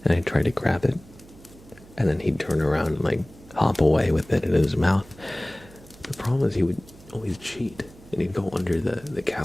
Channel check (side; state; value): right; noise; hum, 22 dB below the sound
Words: and I'd try to grab it. And then he'd turn around and like hop away with it in his mouth. The problem is he would always cheat and he'd go under the